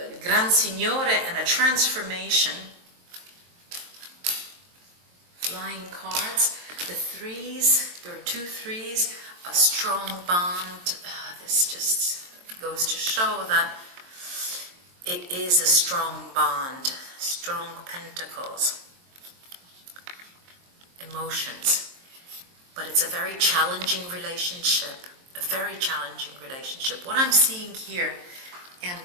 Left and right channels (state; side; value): late; left; 23 ms